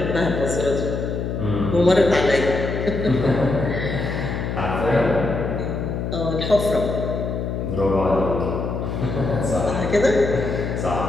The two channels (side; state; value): left; noise; hum, 3 dB below the sound